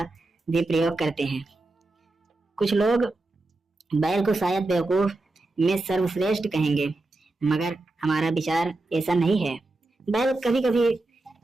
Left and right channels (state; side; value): quieter; left; 3.0 dB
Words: भी प्रयोग करते हैं। कुछ लोग बैल को शायद बेवकूफ में सर्वश्रेष्ठ कहेंगे, मगर हमारा विचार ऐसा नहीं है। बैल कभी कभी